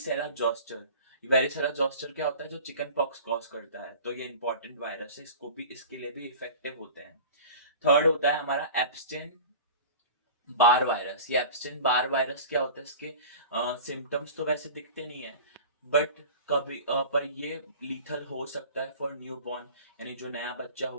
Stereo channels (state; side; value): inverted; both; correlation -0.38